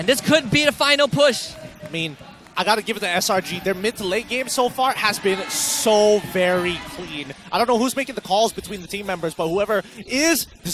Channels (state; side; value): identical; both; correlation 1.00